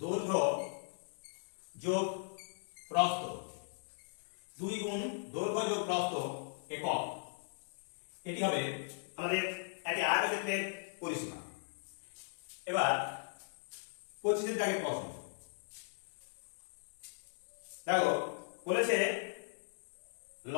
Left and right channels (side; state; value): right; silent; digital silence